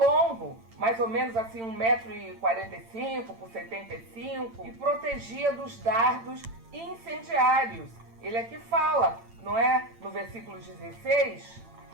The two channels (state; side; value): late; left; 8.9 ms